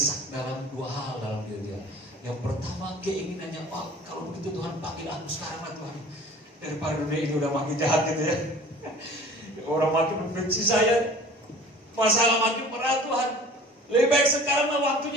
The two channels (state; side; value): normal; both; correlation 0.45